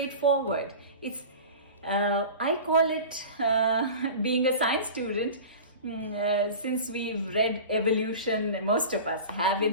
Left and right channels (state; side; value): inverted; both; correlation -0.35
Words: It's I call it, being a science student, since we've read evolution, most of us have